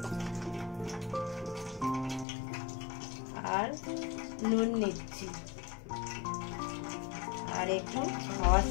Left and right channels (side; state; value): right; drops out; at 2.2 s